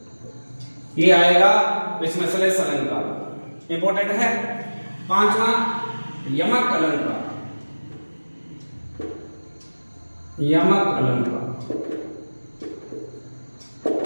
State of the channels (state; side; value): inverted; both; correlation -1.00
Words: ये आएगा इसमें सलेस अलंकार इंपॉर्टेंट है। 5वां यमक अलंकार। यमक अलंकार